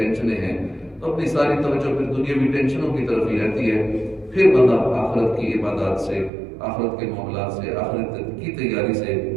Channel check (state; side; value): drops out; left; at 6.3 s